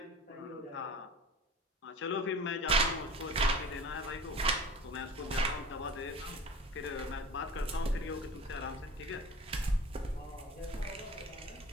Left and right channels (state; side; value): normal; both; correlation 0.39